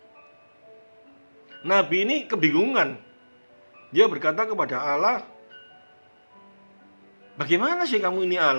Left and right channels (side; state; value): both; inverted; correlation -1.00